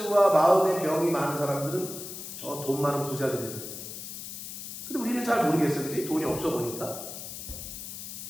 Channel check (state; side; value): noise; left; hiss, 9 dB below the sound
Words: 마음의 병이 많은 사람들은 저 돈 많은 부자들이에요. 근데 우리는 잘 모르겠어, 그지? 돈이 없어 보니까.